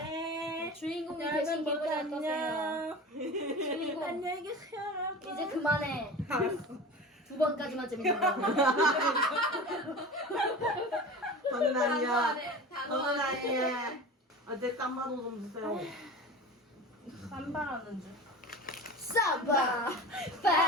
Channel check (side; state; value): both; normal; correlation 0.33